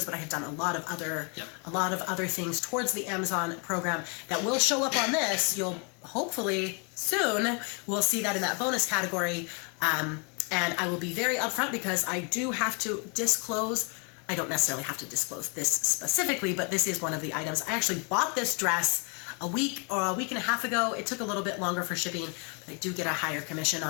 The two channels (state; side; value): quieter; right; 35.1 dB